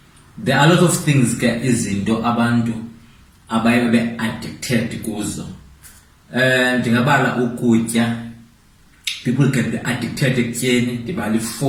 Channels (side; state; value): both; identical; correlation 1.00